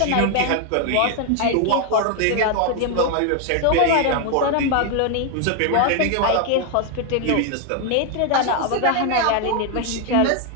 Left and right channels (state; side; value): different; both; correlation 0.01